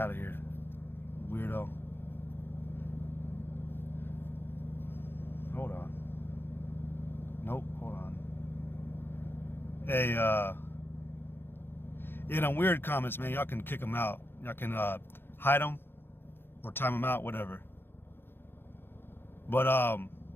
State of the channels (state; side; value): late; right; 0.10 ms